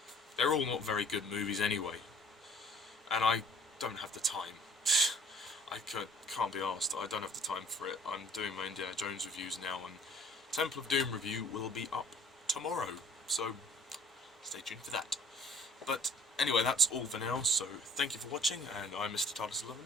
They're all not very good movies anyway, and I don't have the time. I can't be asked. I don't have the time for it. I'm doing my Indiana Jones reviews now, and Temple of Doom review will be up tomorrow, so stay tuned for that. But anyway, that's all for now, so thank you for watching, and I'm Mr. TARDIS11.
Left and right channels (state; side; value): normal; both; correlation 0.52